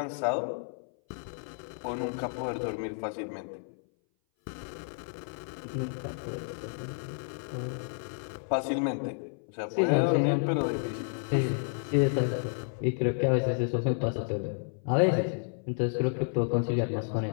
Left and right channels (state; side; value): silent; right; 57 dB below the other